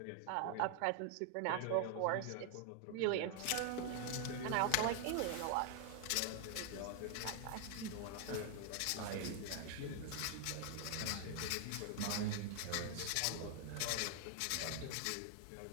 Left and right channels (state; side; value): different; both; correlation 0.00